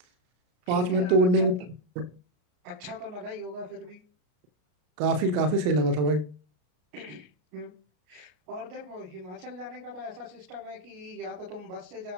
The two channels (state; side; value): late; left; 33 ms